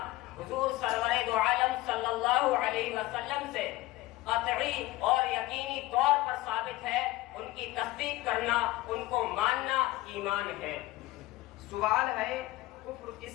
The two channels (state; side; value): quieter; right; 18.2 dB